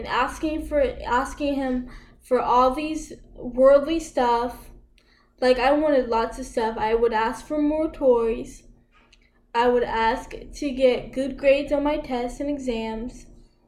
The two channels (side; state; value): both; identical; correlation 1.00